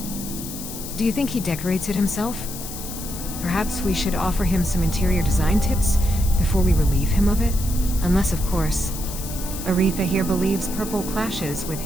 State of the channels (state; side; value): noise; left; hiss, 10 dB below the sound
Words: Do you think he decorates it himself? Perhaps we should offer him some interior design tips before we relieve him of it? Unless, of course, Aretha here believes purple clashes with